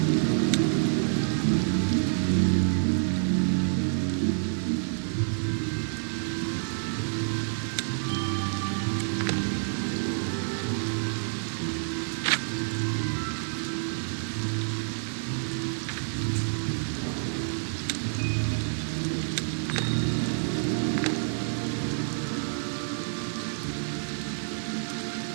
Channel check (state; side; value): silent; left; digital silence